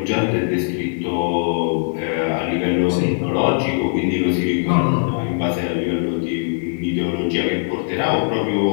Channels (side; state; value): right; silent; digital silence